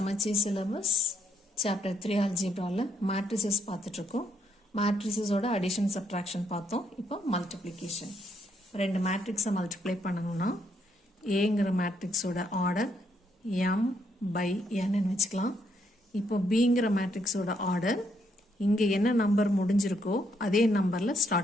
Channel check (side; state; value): both; normal; correlation 0.74